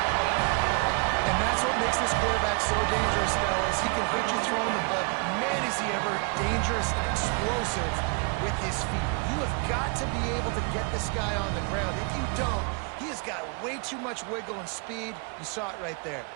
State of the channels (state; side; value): quieter; left; 35.8 dB